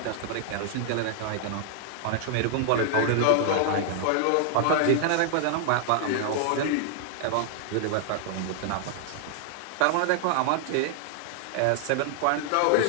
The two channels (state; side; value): different; both; correlation -0.01